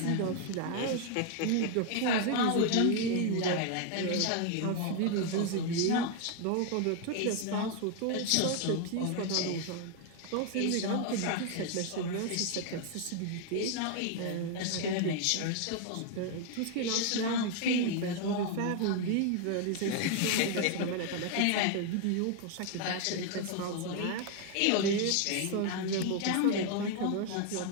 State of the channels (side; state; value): both; different; correlation 0.00